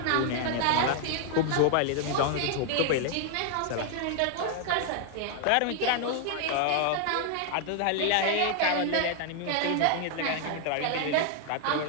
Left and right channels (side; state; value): both; different; correlation 0.00